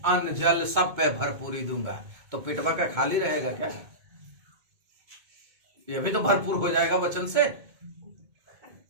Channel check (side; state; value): left; late; 2.2 ms